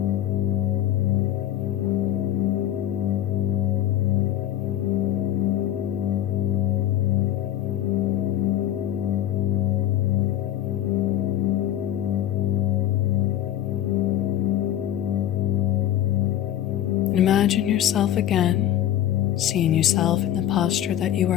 And imagine yourself again, seeing yourself in the posture that you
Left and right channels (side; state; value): right; quieter; 11.7 dB